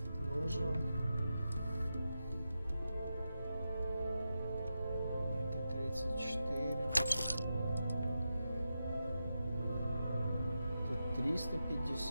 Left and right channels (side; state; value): both; inverted; correlation -0.89